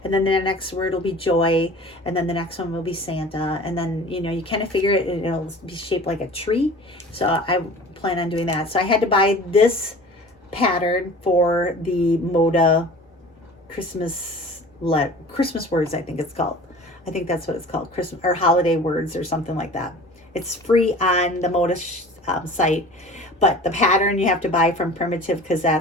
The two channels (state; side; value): normal; both; correlation 0.42